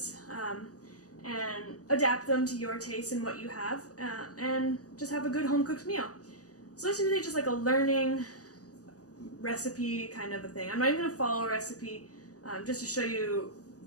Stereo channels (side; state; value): right; late; 0.67 ms